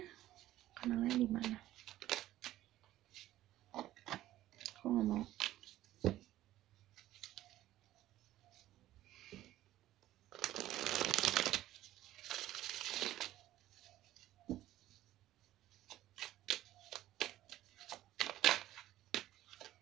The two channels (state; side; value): quieter; left; 14.4 dB